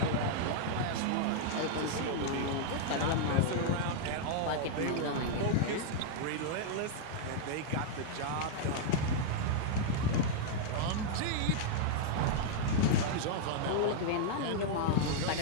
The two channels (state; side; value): different; both; correlation -0.01